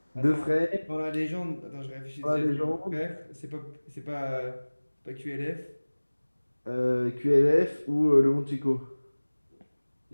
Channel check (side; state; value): both; inverted; correlation -1.00